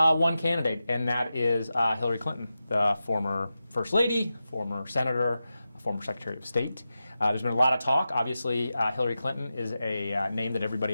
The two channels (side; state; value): both; inverted; correlation -0.92